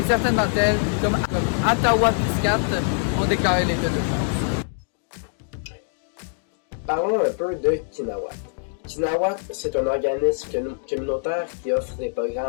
certaines d'entre elles, comme Ottawa-Piscat, ont déclaré l'état d'urgence. Parlons un peu de Kinawat. Kinawat, c'est un organisme communautaire qui offre des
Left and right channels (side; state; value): right; silent; digital silence